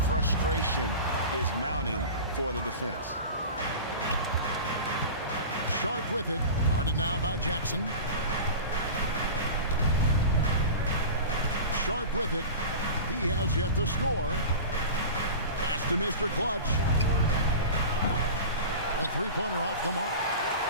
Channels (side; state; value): both; inverted; correlation -0.32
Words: frustration is mounting for the defense. Sharp with it. Guarded now by Jackson. Sharp with it. He has yet to score. Pass to Mr. Clutch. A three-pointer off the mark.